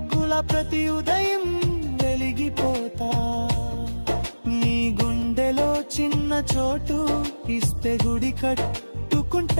ప్రతి ఉదయం వెలిగిపోతా. నీ గుండెలో చిన్న చోటు ఇస్తే గుడి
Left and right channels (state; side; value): inverted; both; correlation -1.00